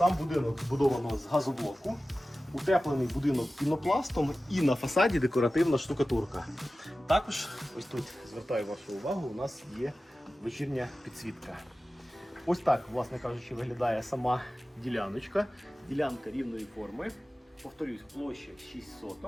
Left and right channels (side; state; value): both; normal; correlation 0.95